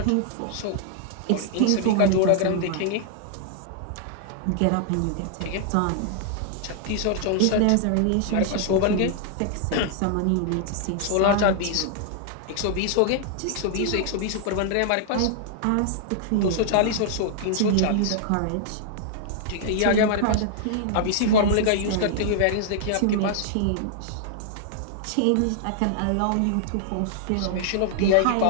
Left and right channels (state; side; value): different; both; correlation -0.01